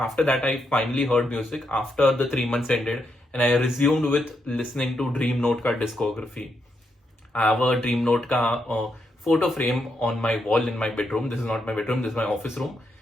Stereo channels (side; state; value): both; normal; correlation 0.81